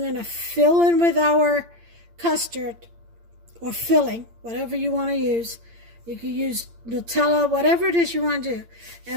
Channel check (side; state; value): left; late; 8.7 ms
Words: to fill in with our custard, or filling, whatever you want to use. You can use Nutella, whatever it is you want to do.